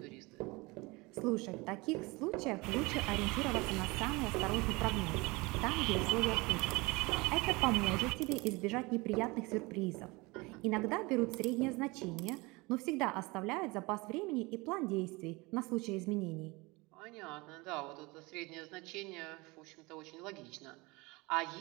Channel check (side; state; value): left; quieter; 24.4 dB